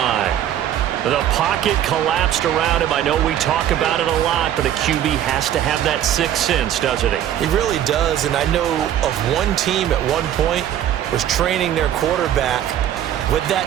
The pocket collapsed around him. I know we talk about it a lot, but a QB has to have that sixth sense, doesn't he? He really does, and I know of one team at one point was training their quarterback with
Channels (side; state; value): left; quieter; 11.0 dB